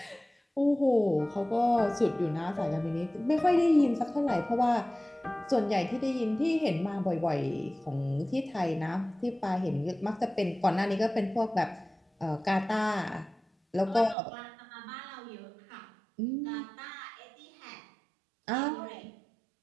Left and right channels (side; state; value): left; drops out; at 14.2 s